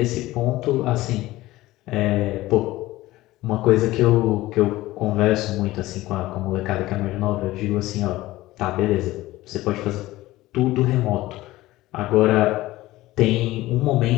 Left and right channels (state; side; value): quieter; right; 17.5 dB